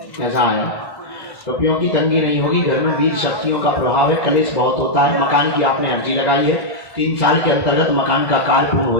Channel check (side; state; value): right; late; 1.2 ms